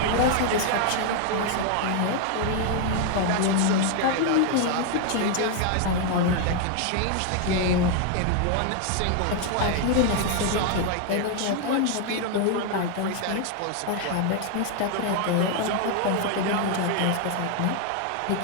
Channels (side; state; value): both; different; correlation 0.00